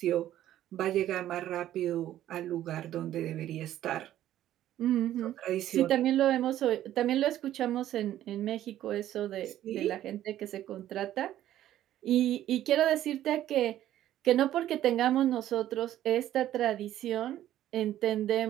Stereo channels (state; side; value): quieter; left; 12.7 dB